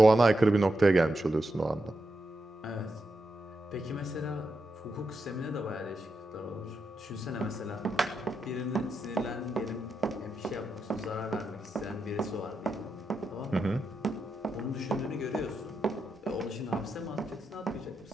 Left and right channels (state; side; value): normal; both; correlation 0.85